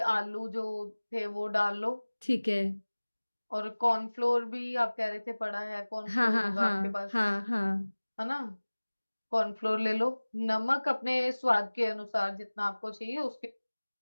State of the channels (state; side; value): inverted; both; correlation -1.00